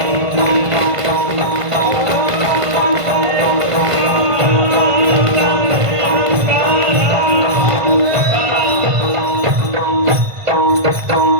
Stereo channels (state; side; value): late; left; 1.5 ms